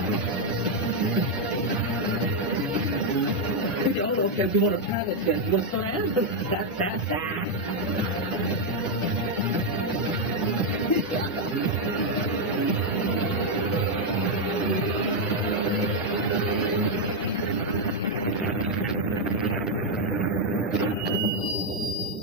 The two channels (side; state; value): both; normal; correlation 0.01